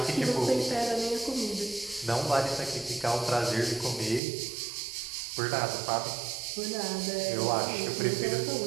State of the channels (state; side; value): drops out; left; at 4.2 s